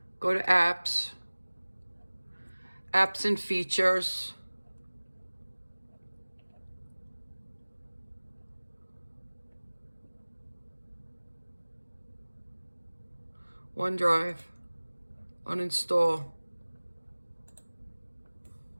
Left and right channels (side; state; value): both; inverted; correlation -1.00